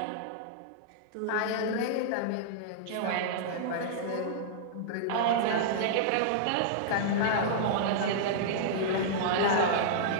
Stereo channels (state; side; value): different; both; correlation -0.02